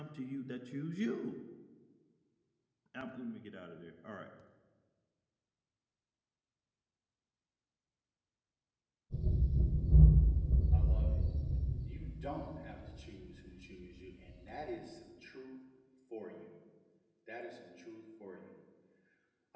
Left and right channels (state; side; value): identical; both; correlation 1.00